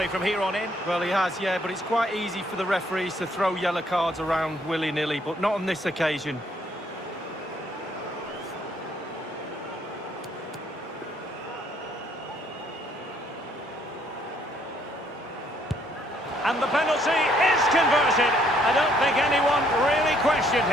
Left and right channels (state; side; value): normal; both; correlation 0.67